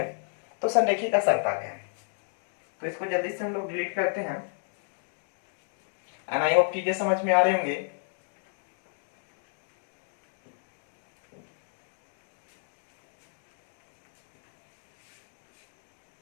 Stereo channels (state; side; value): silent; right; digital silence